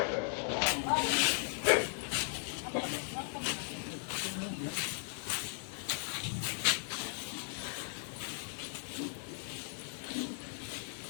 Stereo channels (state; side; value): silent; right; 53 dB below the other